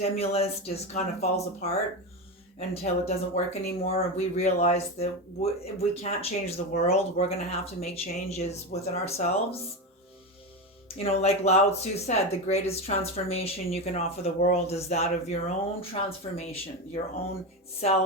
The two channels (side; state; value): both; normal; correlation 0.17